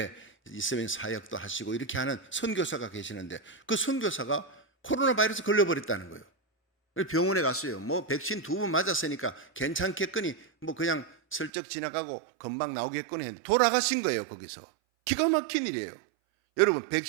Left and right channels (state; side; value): drops out; left; at 11.5 s